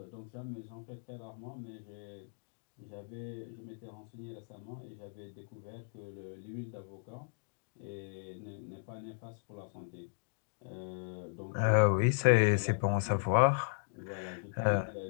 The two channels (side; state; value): right; silent; digital silence